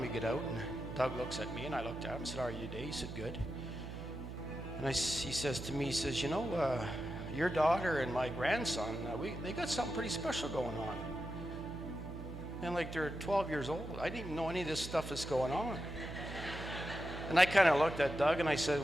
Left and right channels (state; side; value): noise; right; hum, 9 dB below the sound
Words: we get out, and Doug looks at me, and I looked at him and said, "How are you today?" He said, "Good." And he says to me, he says, "You know, your daughter and my grandson, they got something pretty special going on. And like they're 12 years old. I didn't even know any of this stuff is going on." And I kind of looked at Doug and I said,